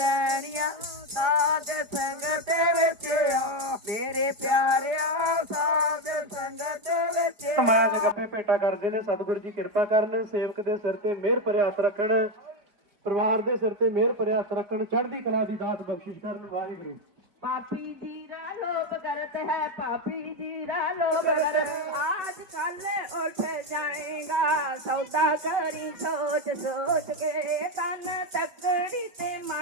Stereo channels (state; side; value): late; left; 5.0 ms